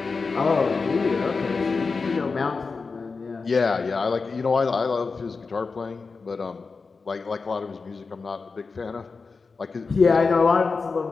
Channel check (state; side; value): quieter; right; 4.5 dB